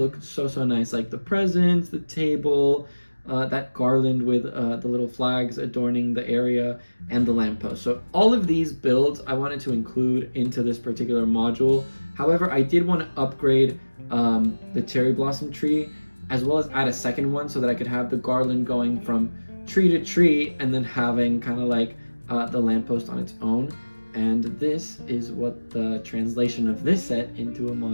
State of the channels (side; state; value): both; inverted; correlation -1.00